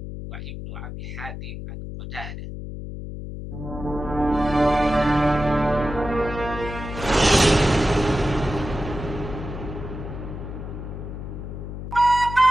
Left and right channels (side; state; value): left; noise; hum, 8 dB below the sound